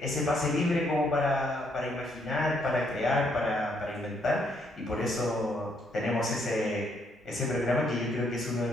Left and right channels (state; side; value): normal; both; correlation 0.72